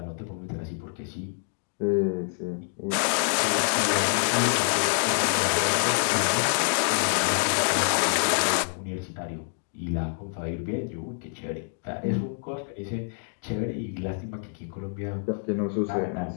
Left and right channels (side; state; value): right; silent; digital silence